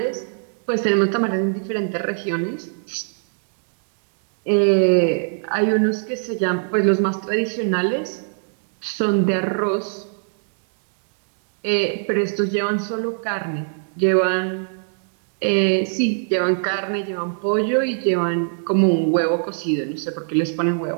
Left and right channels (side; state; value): left; silent; digital silence